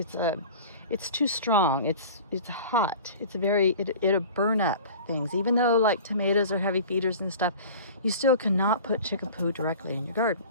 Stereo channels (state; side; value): inverted; both; correlation -0.40